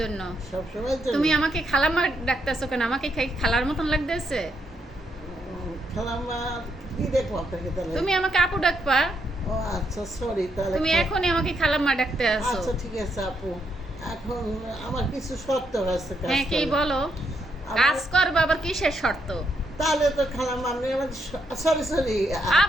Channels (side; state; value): both; normal; correlation 0.78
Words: সব সময়ের জন্য? তুমি আমাকে খালাম্মা ডাকতেছো কেন? আমাকে খালার মতন লাগতেছে। খালাম্মা কি দেখবো আপনাকে তাহলে? তুমি আমাকে আপু ডাকবা। ও আচ্ছা, সরি তাহলে। তুমি এখনই আমাকে খালাম্মা ডাকতে আসো। আচ্ছা ঠিক আছে আপু, এখন আমার কিছু শর্ত আছে কাজ হ্যাঁ কি করার। বলো? আমার- কাজ করবা আবার কিসের শর্ত? তাহলে তো খালাম্মা আপনি আমার সরি সরি